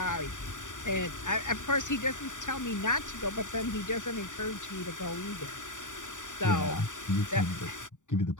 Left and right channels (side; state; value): right; late; 0.86 ms